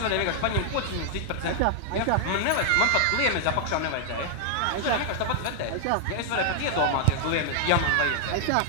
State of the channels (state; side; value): different; both; correlation 0.00